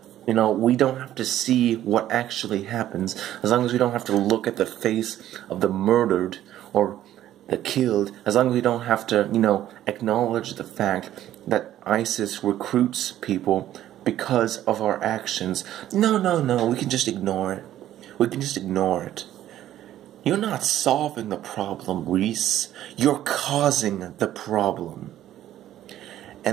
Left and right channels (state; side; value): quieter; left; 12.6 dB